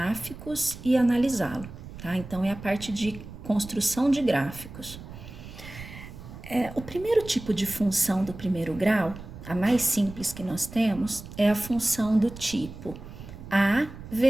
e analisá-lo, tá? Então, é a parte de construção de gráficos. O primeiro tipo de função do primeiro grau, a mais simples que nós temos, é a função do tipo a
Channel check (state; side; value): noise; right; rumble, 14 dB below the sound